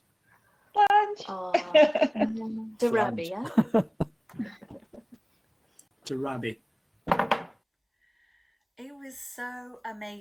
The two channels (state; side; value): identical; both; correlation 1.00